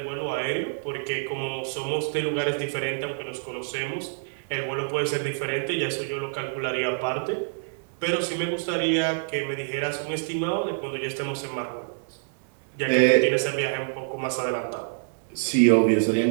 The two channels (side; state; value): left; silent; digital silence